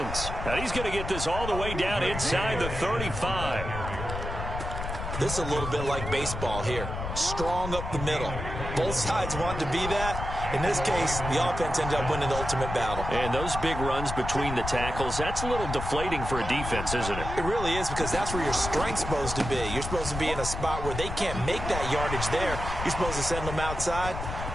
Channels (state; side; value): noise; left; rumble, 6 dB below the sound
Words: And he's going to get this all the way down inside the 35. This is a little bit like baseball here. Strong up the middle. Both sides want to be that. In this case, the offense ended up winning the ultimate battle. And those big runs between the tackles, that's a little deflating for a defense, isn't it? It really is, because that's where your strength's supposed to be. You're supposed to be in a spot where they can't make that yardage there. You're supposed to send them outside.